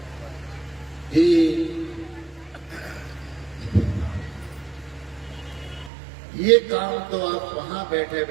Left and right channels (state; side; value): drops out; left; at 5.9 s